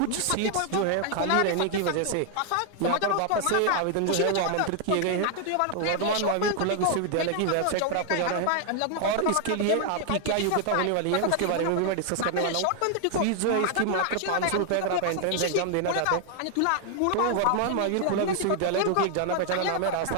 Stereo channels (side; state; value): both; different; correlation 0.00